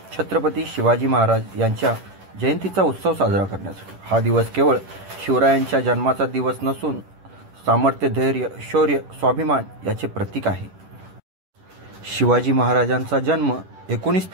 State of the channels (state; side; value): late; left; 10 ms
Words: छत्रपती शिवाजी महाराज यांच्या जयंतीचा उत्सव साजरा करण्यासाठी. हा दिवस केवळ शिवरायांच्या जन्माचा दिवस नसून सामर्थ्य, धैर्य, शौर्य, स्वाभिमान याचे प्रतीक आहे. शिवाजी महाराजांचा जन्म 19